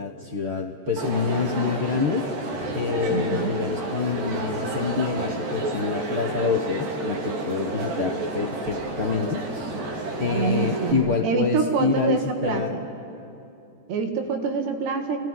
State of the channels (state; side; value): late; left; 14 ms